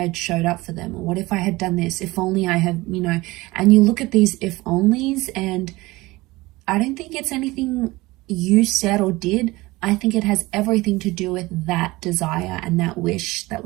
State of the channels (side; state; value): left; quieter; 20.6 dB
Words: showed up for them, or what if I had done this, if only I had, you know. And you look at these if onlys, and I don't think it's anything you said or did. I think it has everything to do with that desire and that wish that